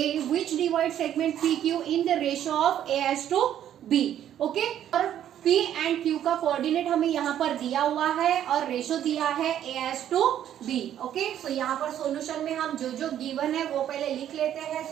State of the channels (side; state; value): left; quieter; 10.8 dB